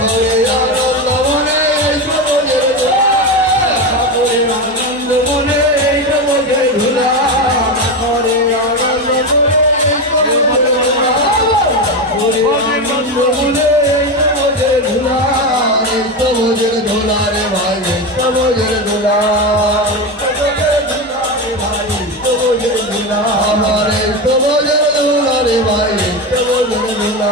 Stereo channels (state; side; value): normal; both; correlation 0.17